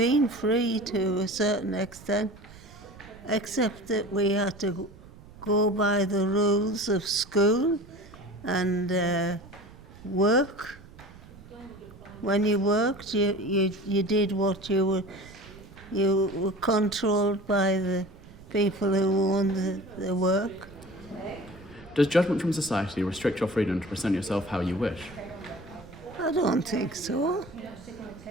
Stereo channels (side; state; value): right; noise; rumble, 20 dB below the sound